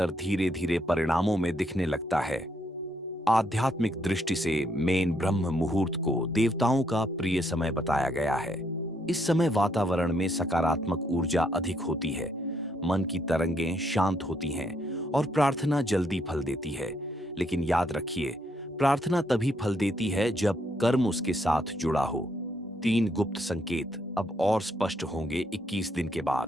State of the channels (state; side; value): normal; both; correlation 0.73